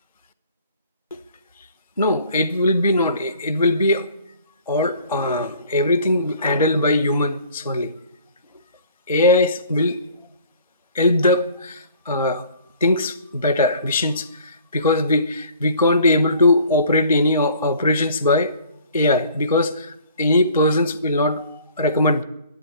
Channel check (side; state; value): both; inverted; correlation -0.52